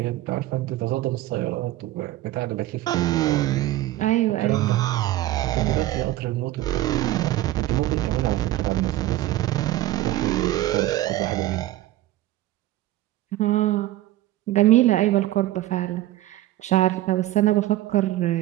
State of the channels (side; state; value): left; quieter; 15.4 dB